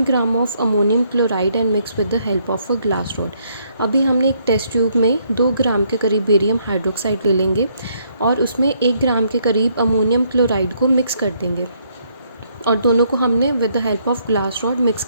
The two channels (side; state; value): both; inverted; correlation -0.71